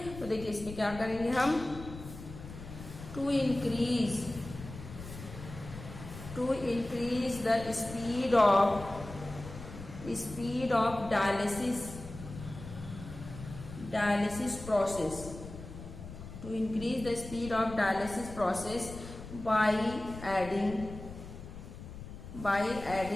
तो देखिए इसमें क्या करेंगे हम, to increase the speed of dialysis process, to increase the speed of dialysis process by adding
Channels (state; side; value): noise; left; rumble, 12 dB below the sound